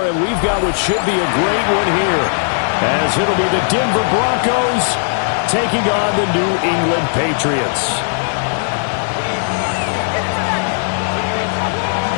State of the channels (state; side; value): silent; right; digital silence